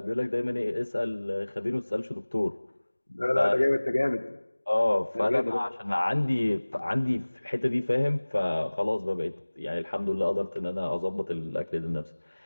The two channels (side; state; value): both; inverted; correlation -1.00